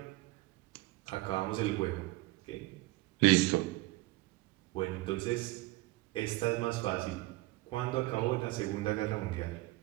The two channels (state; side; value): quieter; left; 19.7 dB